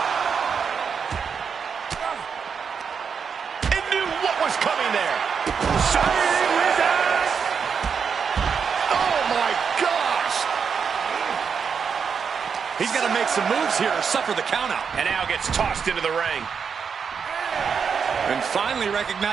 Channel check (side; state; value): left; quieter; 6.4 dB